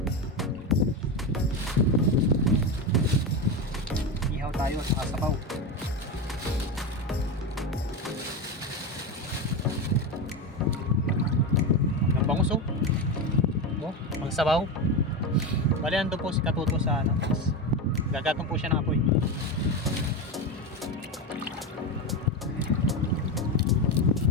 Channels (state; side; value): normal; both; correlation 0.17